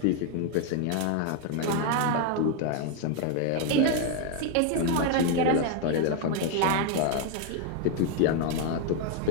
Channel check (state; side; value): different; both; correlation 0.01